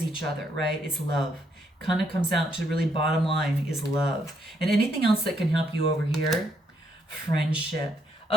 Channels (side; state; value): both; normal; correlation 0.74